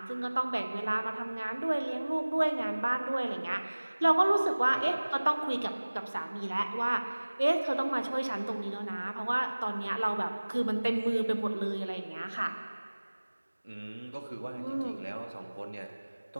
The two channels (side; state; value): both; inverted; correlation -1.00